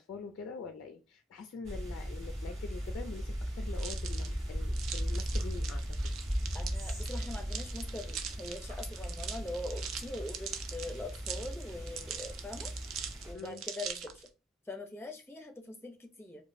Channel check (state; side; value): normal; both; correlation 0.82